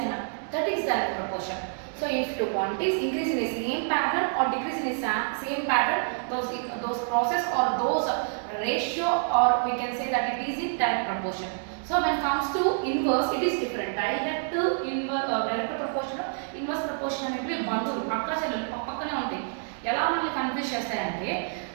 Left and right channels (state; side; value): silent; left; 60 dB below the other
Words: అయినా, that is direct proportion. So if two quantities increase in the same pattern or decrease in the same pattern, those process or those ratio, or we can say that it is in direct proportion. So when it comes to inverse, it is different. Direct inverse, direct proportion, inverse proportion అనేవి బంధువులు అక్క చెల్లెలు పక్కనే ఉంటాయి. ఎలా మనల్ని కన్ఫ్యూజ్ చేస్తాయంటే,